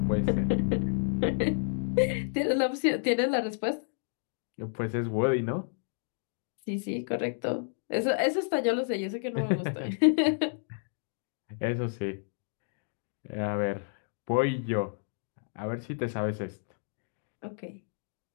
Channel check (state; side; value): silent; right; digital silence